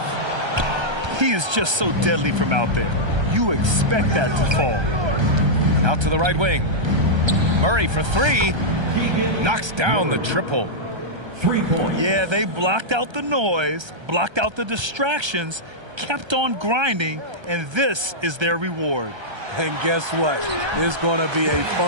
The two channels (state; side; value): late; left; 1.3 ms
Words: He is just so deadly from out there. You expect that to fall. Out to the right wing. Murray for 3. Knocks down the triple. 3 points. Yeah, they blocked out the noise, blocked out the distractions, kept on grinding, and this is their reward. And guess what? It's going to be a